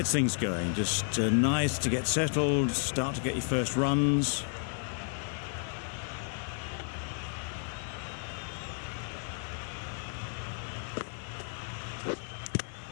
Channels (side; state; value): right; silent; 56 dB below the other